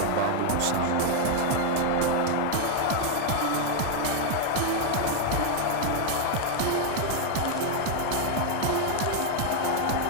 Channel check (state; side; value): different; both; correlation 0.00